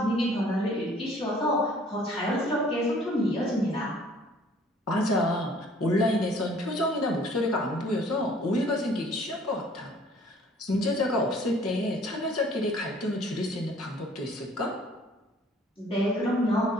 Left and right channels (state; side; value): normal; both; correlation 0.55